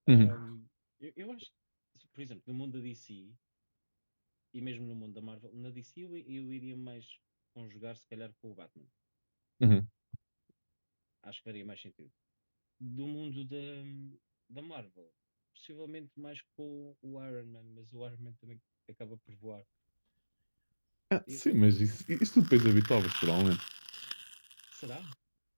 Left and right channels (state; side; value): inverted; both; correlation -1.00